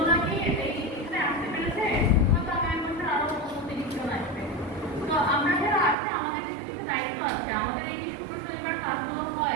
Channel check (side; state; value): left; drops out; at 6.0 s